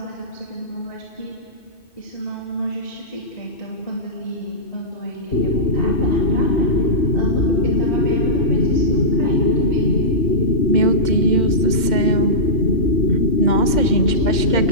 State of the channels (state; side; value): late; right; 2.1 ms